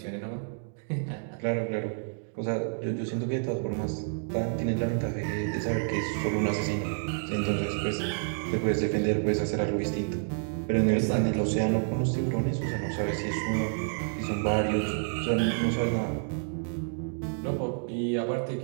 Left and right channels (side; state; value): left; silent; digital silence